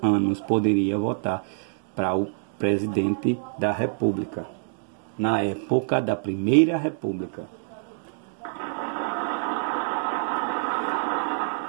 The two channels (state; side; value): silent; left; digital silence